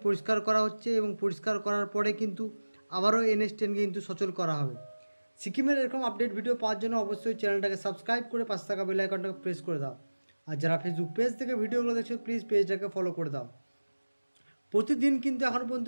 পরিষ্কার করা হচ্ছে এবং পরিষ্কার করার পরে কিন্তু আবারও NH 10-কে কিন্তু সচল করা হবে। সিকিমের এরকম আপডেট ভিডিও পাওয়ার জন্য অবশ্যই চ্যানেলটাকে সাবস্ক্রাইব করে পাশে থাকা বেল আইকনটাকে প্রেস করে দাও। আর যারা ফেসবুক পেজ থেকে ভিডিওগুলো দেখছো প্লিজ পেজটাকে ফলো করে দাও। প্রতিদিন কিন্তু এখন পর্যন্ত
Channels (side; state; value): both; inverted; correlation -1.00